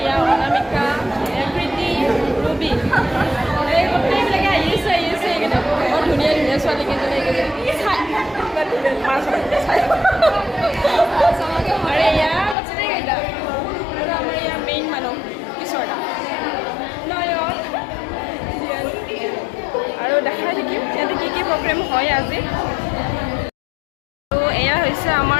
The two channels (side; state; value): right; drops out; at 12.6 s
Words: অনামিকা, এয়া প্ৰীতি, ৰুবি, এই গোটেইবিলাকে আহিছে এইকেইটা বৰ ধুনীয়া ধুনীয়া ছোৱালীকেইজনী আৰু এয়া গোটেইকেইটা। আৰু আমাৰ ইয়াৰ মেইন মানুহ কিশোৰদা, নয়ন, আৰু দেখাই থাকিম ইয়াতে কি প্ৰগ্ৰেম হয় আজি। আৰু এয়া হৈছে